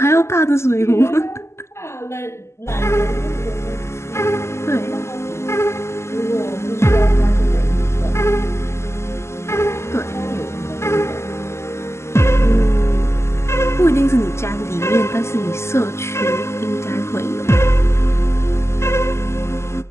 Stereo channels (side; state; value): right; late; 0.13 ms